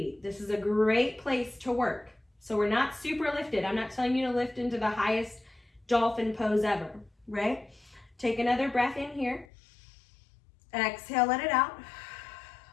This is a great place to work. So we're not super lifted. I'm not telling you to lift into the highest dolphin pose ever, right? Take another breath in here. Exhale, let it out.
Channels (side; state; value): right; drops out; at 9.5 s